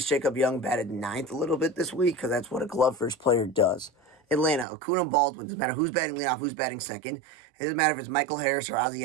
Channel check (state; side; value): drops out; left; at 4.7 s